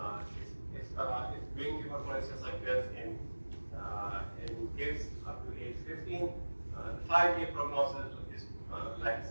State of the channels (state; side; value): inverted; both; correlation -1.00